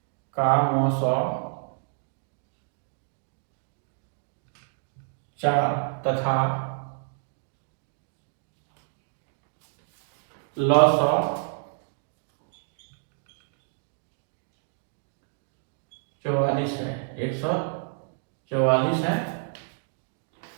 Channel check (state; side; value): silent; left; digital silence